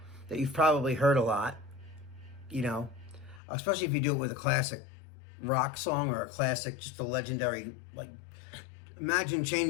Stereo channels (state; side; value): drops out; right; at 3.4 s